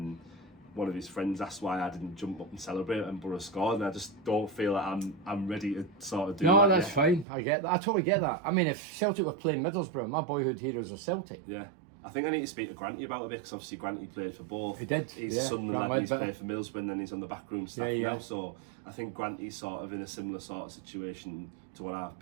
one of his friends asked why I didn't jump up and celebrate and Borough scored, and I just don't feel like I'm ready to sort of do that. No, that's fine. I get that. I totally get that. I mean, if Celtic were playing Middlesbrough, my boyhood heroes are Celtic. Yeah. I think I need to speak to Granty about it, because obviously Granty played for both. He did. He's a Sunderland lad, and he's played for Middlesbrough, and then he's on the backroom staff now. So I think Granty's sort of in a similar sort of situation to what I've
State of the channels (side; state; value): left; drops out; at 7.2 s